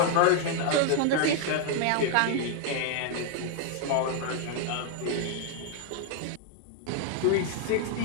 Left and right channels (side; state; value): both; different; correlation 0.00